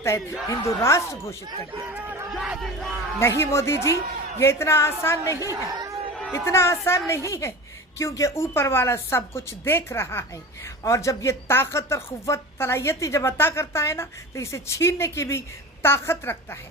हिंदू राष्ट्र घोषित कर दिया जाए। नहीं मोदी जी, ये इतना आसान नहीं है, इतना आसान नहीं है, क्योंकि ऊपर वाला सब कुछ देख रहा है। और जब ये ताकत और क़ुव्वत सलाहियत जब अता करता है ना, तो इसे छीनने की भी ताकत रखता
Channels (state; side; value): normal; both; correlation 0.32